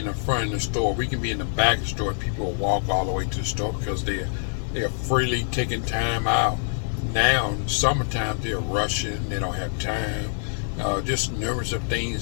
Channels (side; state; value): right; silent; digital silence